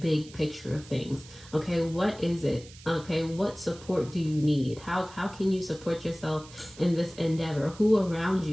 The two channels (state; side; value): noise; right; hiss, 20 dB below the sound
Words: picture of things. Okay, what is it? Okay, what support do you need? How can you support yourself in this endeavor? Who around